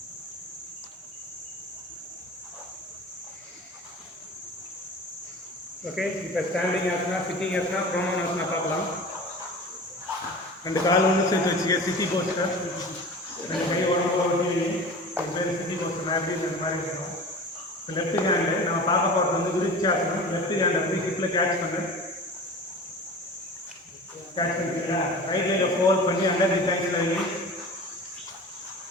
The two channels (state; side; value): normal; both; correlation 0.36